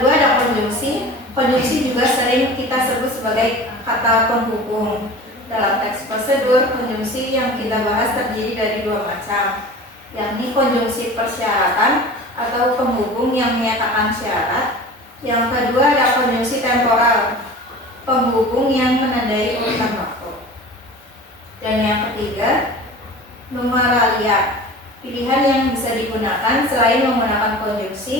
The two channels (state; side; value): normal; both; correlation 0.38